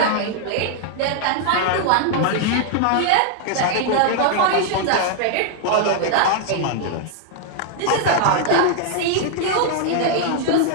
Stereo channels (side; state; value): both; different; correlation -0.01